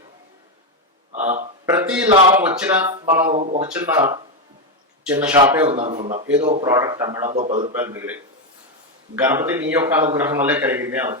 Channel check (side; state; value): both; normal; correlation 0.07